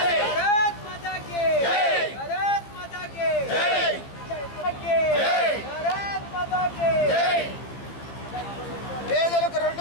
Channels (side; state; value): right; late; 15 ms